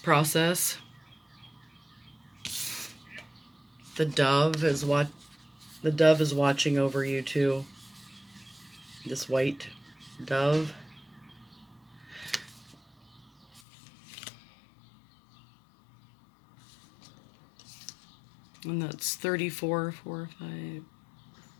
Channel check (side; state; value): right; drops out; at 13.6 s